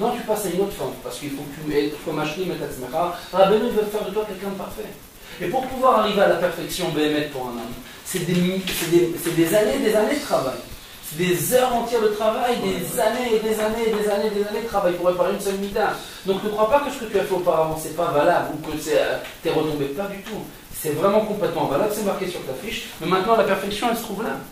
tu passes à une autre forme, parce qu'il faut que tu sois machlim et tatzmecha. Rabbeinu veut faire de toi quelqu'un de parfait. Et pour pouvoir arriver à la perfection Bémet pour un homme, c'est des années de travail. Des heures entières de travail, des années et des années de travail pour réparer une seule mida. Donc ne crois pas que ce que tu as fait auparavant c'est pas valable ou que t'es retombé, pas du tout. C'est vraiment complètement valable, c'est marqué sur ta fiche. Mais maintenant la perfection elle se trouve là.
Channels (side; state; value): both; identical; correlation 1.00